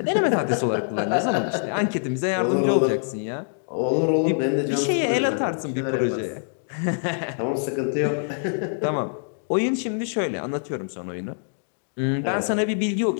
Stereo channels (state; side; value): silent; right; digital silence